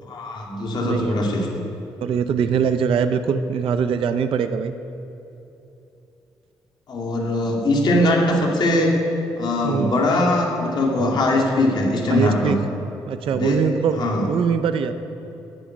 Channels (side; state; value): both; normal; correlation 0.63